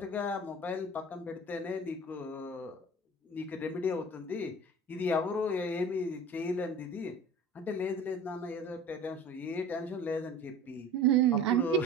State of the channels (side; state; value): both; normal; correlation 0.40